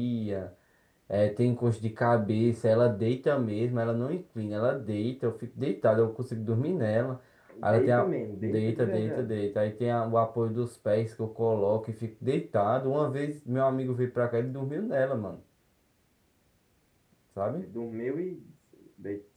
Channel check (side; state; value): both; identical; correlation 1.00